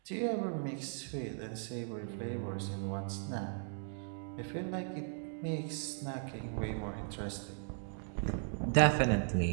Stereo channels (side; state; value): left; silent; 53 dB below the other